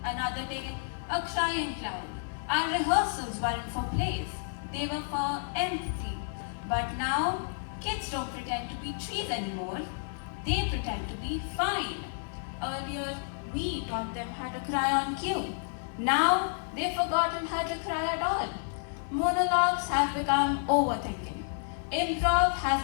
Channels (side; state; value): right; silent; 57 dB below the other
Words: Another day, a crying cloud. Our rehearsals weren't for plays. They were for empathy. But now, kids don't pretend to be trees anymore. They pretend to be fine. Earlier, we taught them how to cry on cue. Now, they've forgotten how to cry at all. Monologues have become overthinking. Improv